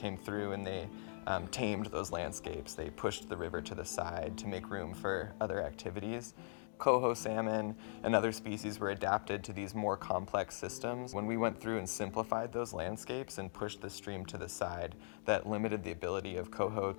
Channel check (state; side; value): silent; right; digital silence